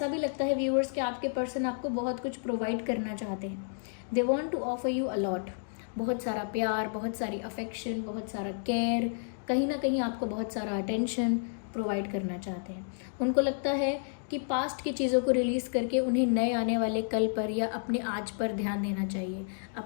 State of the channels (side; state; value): right; silent; digital silence